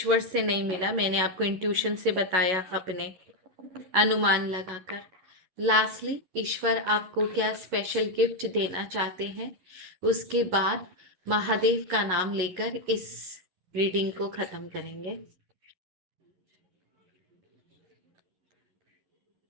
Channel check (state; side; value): late; left; 11 ms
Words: से नहीं मिला, मैंने आपको इंट्यूशन से बताया, अपने अनुमान लगाकर। लास्टली ईश्वर आपको क्या स्पेशल गिफ्ट देना चाहते हैं, उसके बाद महादेव का नाम लेकर इस रीडिंग को खत्म करेंगे।